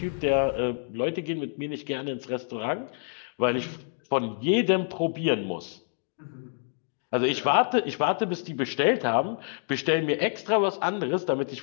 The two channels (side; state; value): right; silent; digital silence